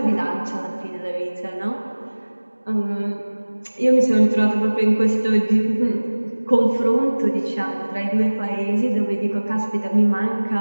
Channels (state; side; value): inverted; both; correlation -1.00